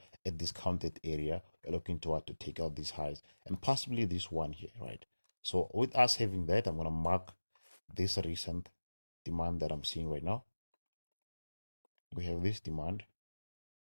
a discounted area. We're looking to take out these highs and possibly this one here, right? So with us having that, I'm going to mark this recent demand that I'm seeing right now. We have this demand,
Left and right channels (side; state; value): both; inverted; correlation -1.00